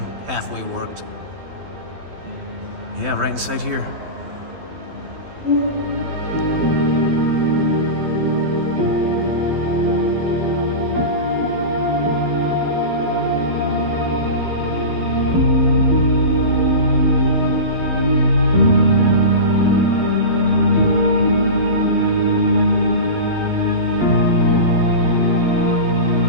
halfway worked. Yeah, right inside here.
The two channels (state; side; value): late; left; 12 ms